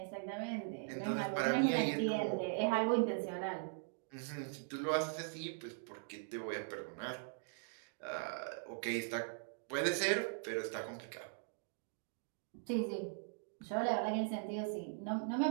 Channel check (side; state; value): left; silent; digital silence